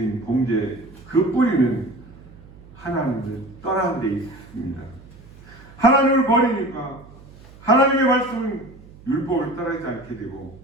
범죄 그 뿌리는 하나님을 떠난 데 있습니다. 하나님을 버리니까 하나님의 말씀 율법을 따르지 않게 되고,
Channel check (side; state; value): right; noise; hum, 21 dB below the sound